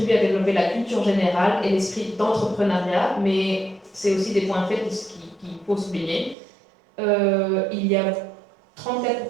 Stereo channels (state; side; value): drops out; left; at 6.4 s